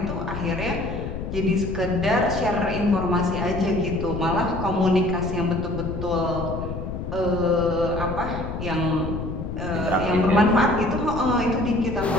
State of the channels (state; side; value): noise; left; rumble, 6 dB below the sound